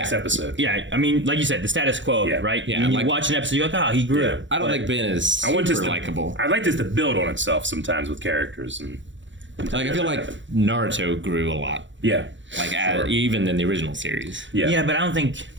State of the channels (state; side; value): late; left; 0.54 ms